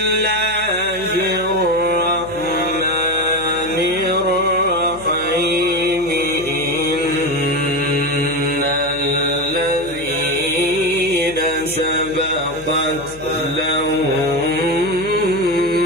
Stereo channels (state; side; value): noise; left; hum, 19 dB below the sound